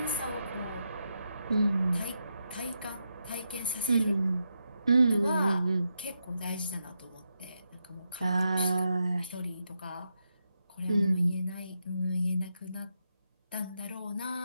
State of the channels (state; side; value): inverted; both; correlation -0.84